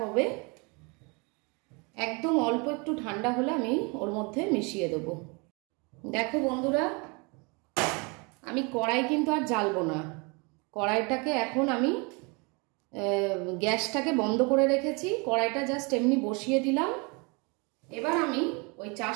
একদম অল্প একটু ঠান্ডা হলে আমি ওর মধ্যে মিশিয়ে দেব। দেখো বন্ধুরা, আমি কড়াই কিন্তু আর জ্বালবো না। কড়াইটাকে এখন আমি গ্যাসটাকে বন্ধ করে রেখেছি। কড়াইটা জাস্ট এমনি বসিয়ে দিলাম। এবার আমি ওই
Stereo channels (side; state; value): left; quieter; 30.2 dB